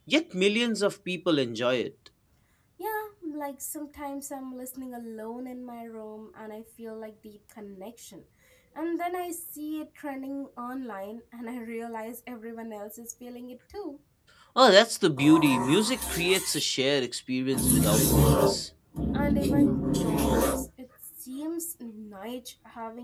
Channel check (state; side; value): identical; both; correlation 1.00